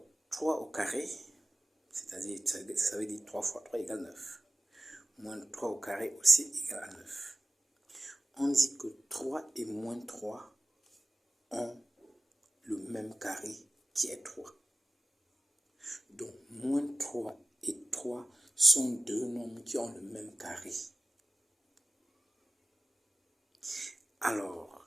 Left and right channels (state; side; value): normal; both; correlation 0.95